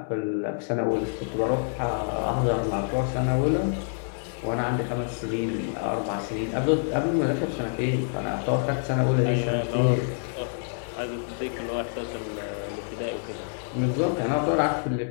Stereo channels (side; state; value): right; silent; 60 dB below the other